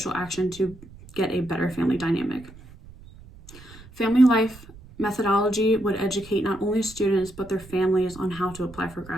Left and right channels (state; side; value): noise; right; rumble, 20 dB below the sound